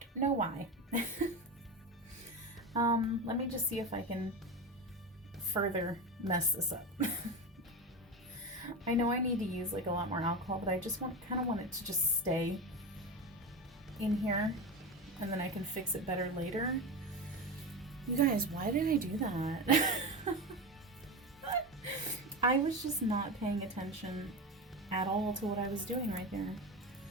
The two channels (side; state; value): both; normal; correlation 0.21